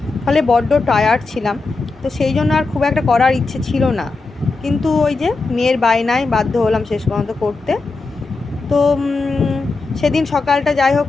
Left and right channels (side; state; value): right; quieter; 3.8 dB